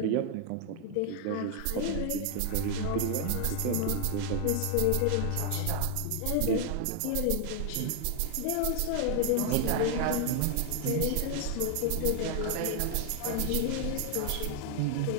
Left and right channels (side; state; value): both; different; correlation 0.00